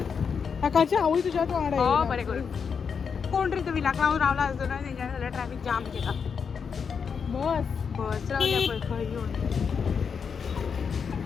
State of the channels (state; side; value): quieter; right; 6.3 dB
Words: कालची आवय तुझ्या तू वाडा बरें करून कोण रे तो विलाक रावून रावला असतो ना तेंच्या जाल्यार ट्रॅफिक जाम केला बस रावल्या पळय खंय घेवन